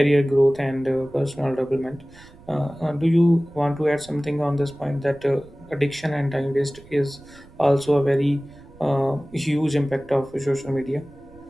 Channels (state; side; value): noise; right; rumble, 23 dB below the sound